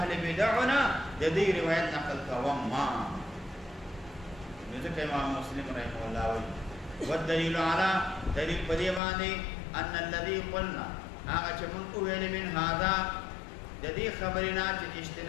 بدعونه د دې روایت نقل کوم ما نو ځکه امام مسلم رحمه الله وایي والدلیل علی دلیل په دې باندې ان الذي قلنا هغه چې موږ ویل من هذا د دې خبرنا چې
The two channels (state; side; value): drops out; right; at 9.0 s